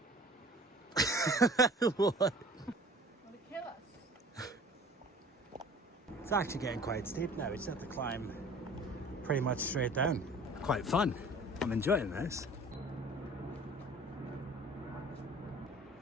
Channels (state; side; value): normal; both; correlation 0.46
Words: What? Want to kill us? It's actually getting quite steep now. We just have to climb pretty much straight down. Quite fun. I'm enjoying this.